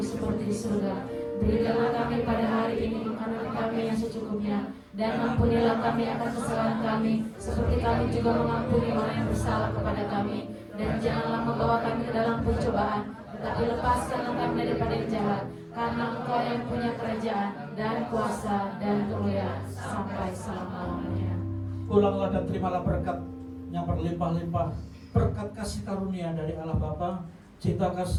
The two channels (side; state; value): both; identical; correlation 1.00